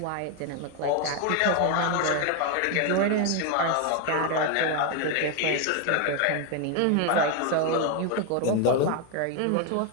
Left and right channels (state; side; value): different; both; correlation 0.01